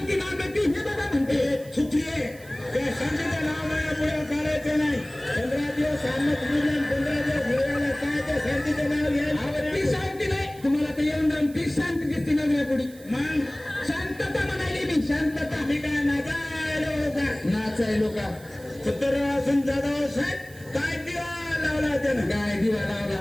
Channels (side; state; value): right; noise; hiss, 22 dB below the sound